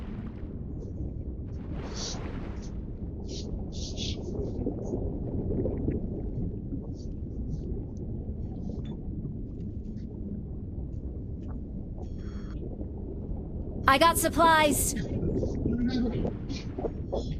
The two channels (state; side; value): identical; both; correlation 1.00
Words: I got supplies.